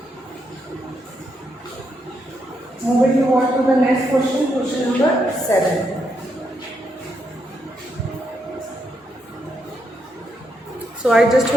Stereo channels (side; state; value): both; normal; correlation 0.80